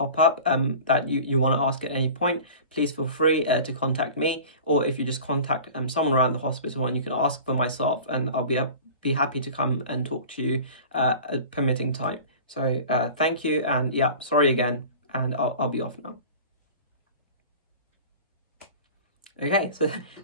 up that you want to ask at any point, please feel free to contact me, or if you just contact someone around the hospital, and you can ask for myself, and I'll be happy to come and talk to you at permitting time. So thank you, and yeah, sorry again, and I'll be off now. Okay, so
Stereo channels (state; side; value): inverted; both; correlation -0.39